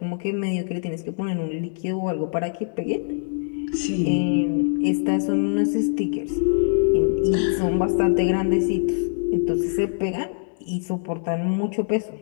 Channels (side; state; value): right; silent; digital silence